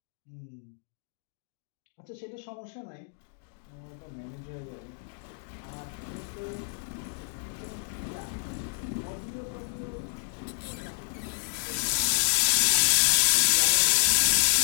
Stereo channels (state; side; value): silent; right; digital silence